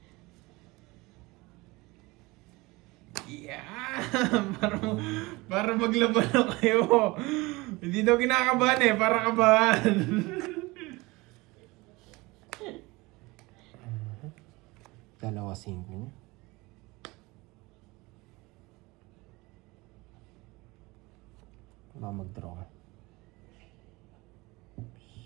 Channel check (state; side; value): quieter; left; 22.8 dB